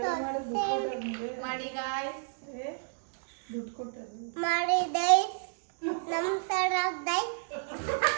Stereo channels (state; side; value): silent; left; digital silence